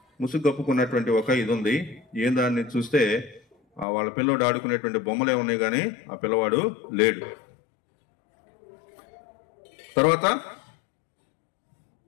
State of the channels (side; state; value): right; drops out; at 3.9 s